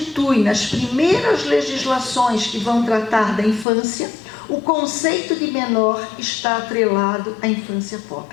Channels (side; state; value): right; drops out; at 3.7 s